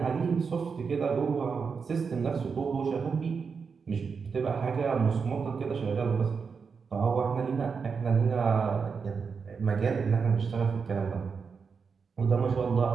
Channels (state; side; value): quieter; left; 5.6 dB